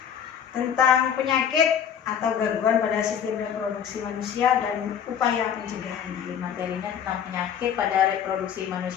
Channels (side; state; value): right; quieter; 8.4 dB